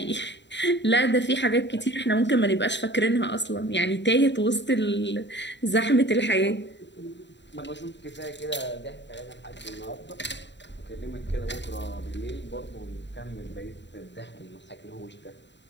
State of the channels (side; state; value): right; late; 0.52 ms